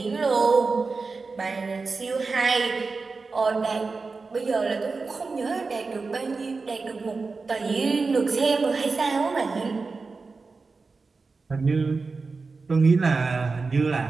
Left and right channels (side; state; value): left; quieter; 4.2 dB